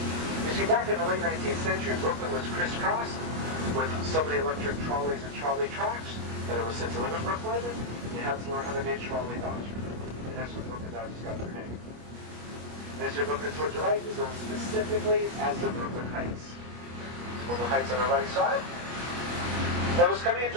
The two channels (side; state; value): left; late; 25 ms